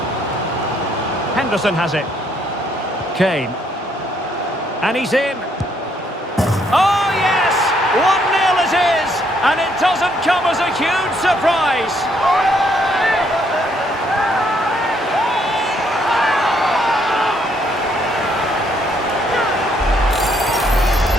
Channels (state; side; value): normal; both; correlation 0.70